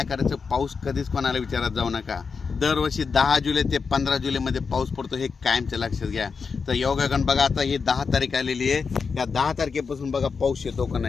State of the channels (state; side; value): quieter; right; 5.3 dB